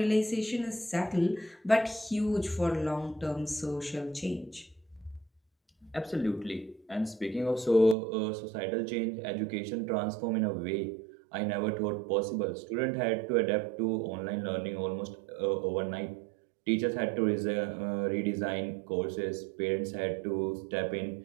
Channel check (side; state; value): left; drops out; at 8.0 s